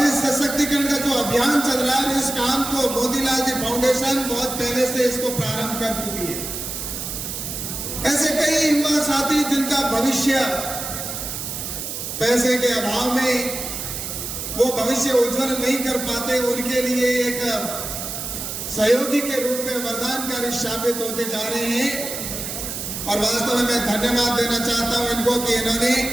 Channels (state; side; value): noise; right; hiss, 6 dB below the sound